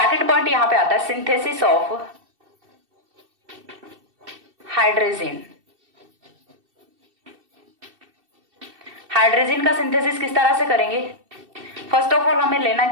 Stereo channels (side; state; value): left; late; 2.7 ms